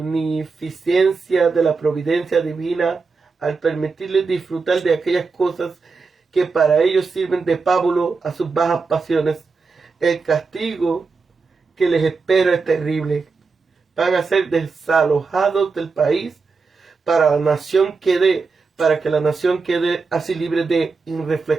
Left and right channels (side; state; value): left; quieter; 4.5 dB